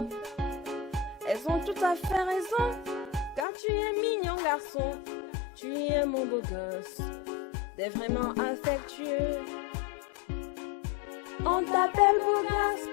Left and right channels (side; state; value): right; drops out; at 3.5 s